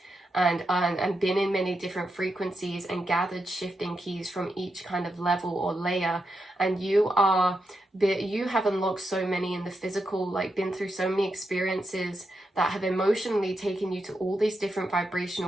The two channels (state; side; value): normal; both; correlation 0.85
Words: and been in many different frequencies and gathered shifting keys from each kind of level or layer, and you have unlocked so many in the physical, like been through so many experiences that have emotionally taken you to all these different